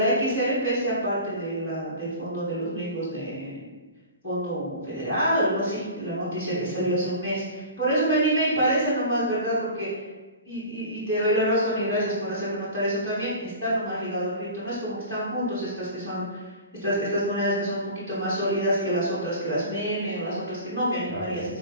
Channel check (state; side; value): inverted; both; correlation -0.36